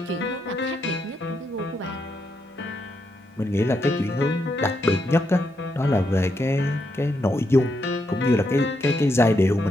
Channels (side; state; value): both; normal; correlation 0.80